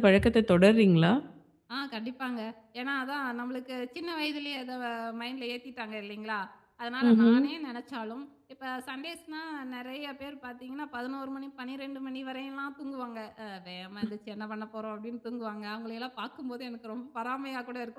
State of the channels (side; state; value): both; identical; correlation 1.00